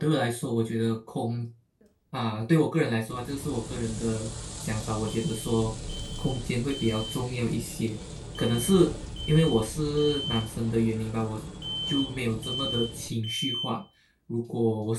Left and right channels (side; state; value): both; identical; correlation 1.00